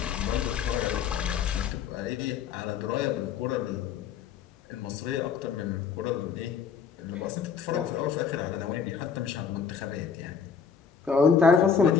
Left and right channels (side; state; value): right; quieter; 6.6 dB